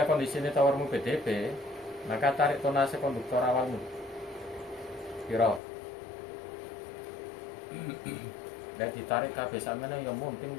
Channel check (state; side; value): drops out; right; at 5.6 s